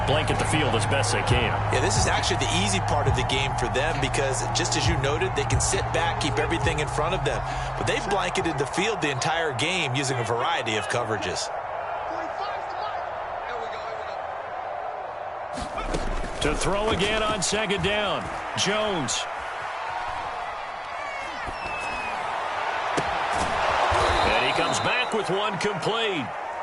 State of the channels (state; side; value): identical; both; correlation 1.00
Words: blanket the field as best they can. Yeah, this is actually the easy part of the game for them because, just as you noted, they can sit back, keep everything in front of them. But they've blanketed the field the entire game using a variety of coverages. To throw again on second down, Jones. And he comes back with one complete.